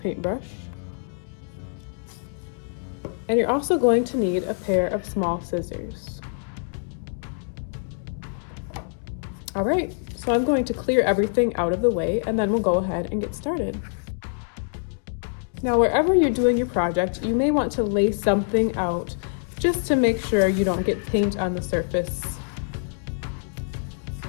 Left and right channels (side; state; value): right; silent; digital silence